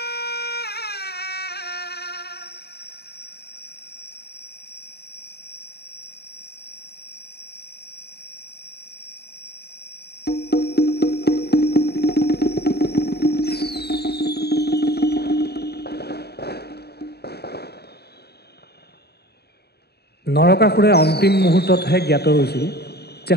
নৰকাসুৰে অন্তিম মুহূৰ্ততহে জ্ঞাত হৈছিল যে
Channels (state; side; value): late; right; 0.47 ms